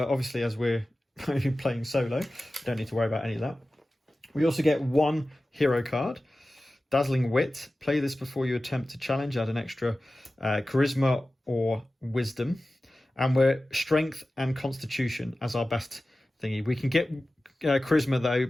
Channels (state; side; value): normal; both; correlation 0.95